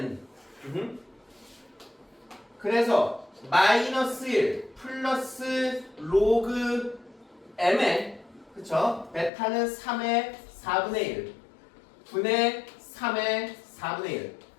그래서 마이너스 1 플러스 로그 m에 그쵸? 베타는 3의 4분의 1 분의 3의 4분의 1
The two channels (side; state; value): right; drops out; at 9.3 s